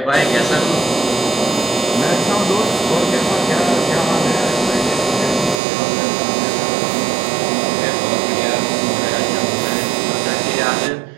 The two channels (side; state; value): left; drops out; at 5.6 s